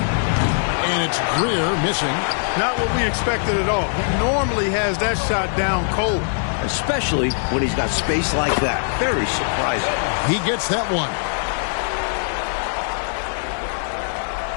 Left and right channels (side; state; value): right; silent; digital silence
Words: it's Greer missing. Not what we expected at all. He normally has that shot down cold. Especially when he's got space like that. Very surprising. He gets that one.